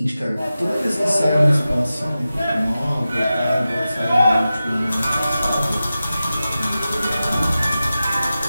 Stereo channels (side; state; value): both; inverted; correlation -0.94